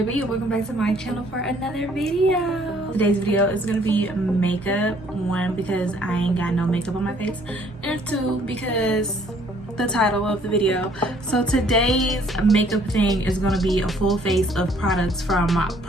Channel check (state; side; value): normal; both; correlation 0.61